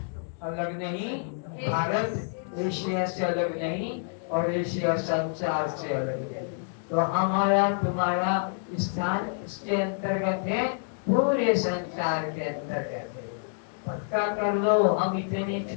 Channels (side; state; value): right; silent; digital silence